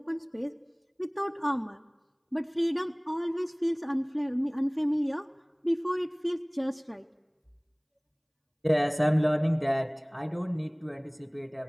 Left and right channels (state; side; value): identical; both; correlation 1.00